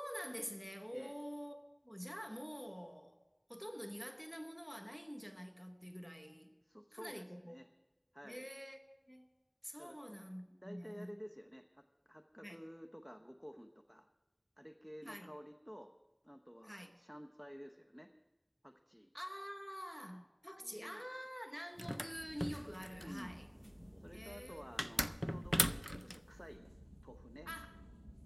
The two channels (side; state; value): both; identical; correlation 1.00